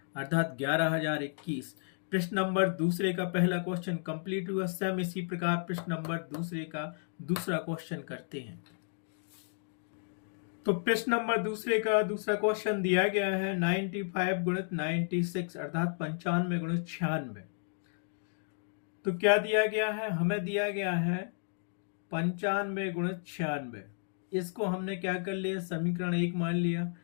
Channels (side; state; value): right; silent; digital silence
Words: अर्थात 11,021। प्रश्न नंबर दूसरे का पहला क्वेश्चन कंप्लीट हुआ। सेम इसी प्रकार प्रश्न नंबर दूसरे का दूसरा क्वेश्चन करते हैं। तो प्रश्न नंबर दूसरे का दूसरा क्वेश्चन दिया गया है 95 गुणित 96 अर्थात 95 गुणित 96। तो क्या दिया गया है, हमें दिया गया है 95 गुणित 96। इसको हमने क्या कर लिया, समीकरण 1 मान लिया।